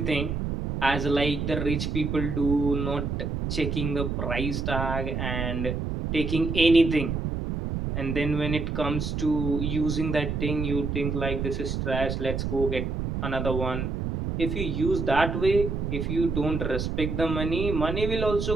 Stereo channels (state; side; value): noise; right; rumble, 2 dB below the sound